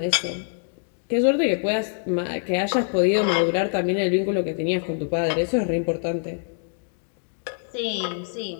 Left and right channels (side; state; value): right; silent; digital silence